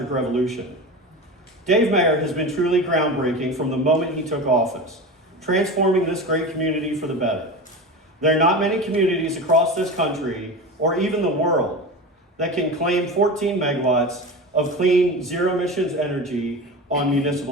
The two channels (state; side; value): normal; both; correlation 0.28